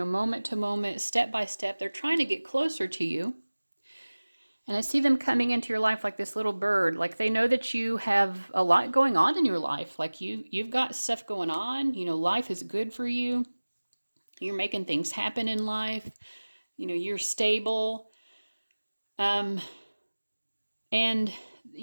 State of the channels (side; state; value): both; inverted; correlation -1.00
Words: to moment, step by step, they're trying to get closer to you. And I see them coming into your life like this little bird. Like they know that you have a lot going on in your life. Like you've got stuff going on. Life is good for you. You're making things happen in life. You're stable. And